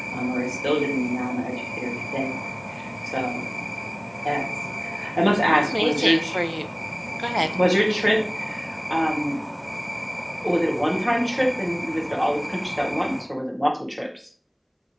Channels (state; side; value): identical; both; correlation 1.00